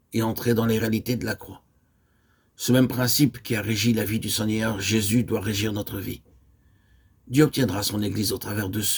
et entrer dans les réalités de la croix. Ce même principe qui a régi la vie du Seigneur Jésus doit régir notre vie. Dieu obtiendra son Église au travers de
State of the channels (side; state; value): both; identical; correlation 1.00